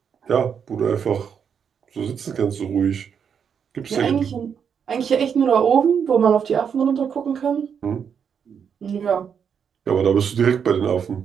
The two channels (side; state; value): left; quieter; 7.3 dB